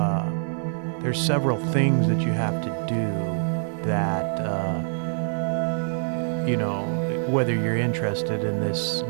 there's several things that you have to do that, whether you're interested in this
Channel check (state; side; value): silent; left; 57 dB below the other